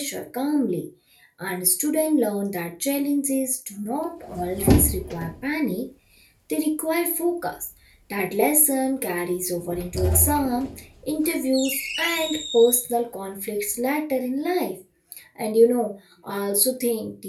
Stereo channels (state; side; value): identical; both; correlation 1.00